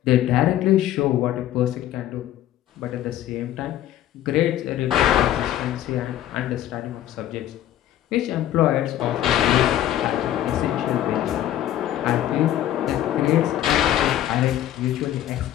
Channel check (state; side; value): quieter; right; 12.4 dB